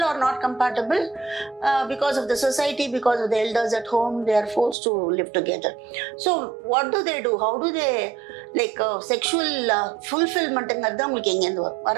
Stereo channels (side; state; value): left; drops out; at 4.8 s